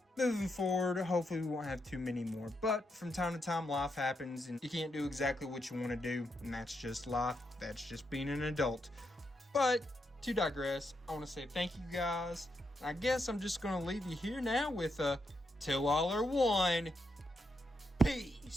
moving forward, hopefully we won't have too many more. But from time to time, life happens and you can't do exactly what you want to do, and that's just life. That's just being an adult. But to digress, I want to say thank you, guys. I guess I'm just going to leave you here now with a till all are one.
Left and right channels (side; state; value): both; normal; correlation 0.82